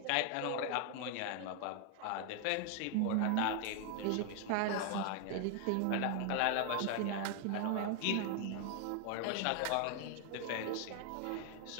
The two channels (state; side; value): different; both; correlation 0.00